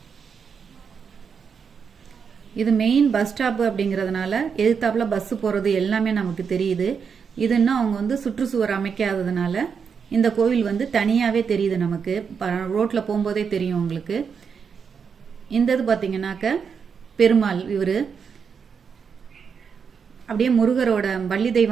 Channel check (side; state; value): left; quieter; 6.3 dB